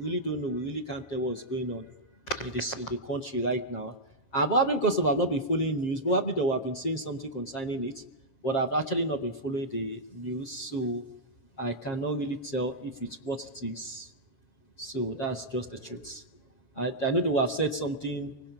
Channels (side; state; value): right; late; 7.4 ms